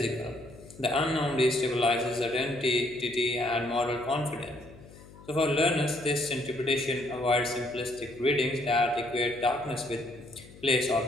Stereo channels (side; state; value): left; noise; hum, 20 dB below the sound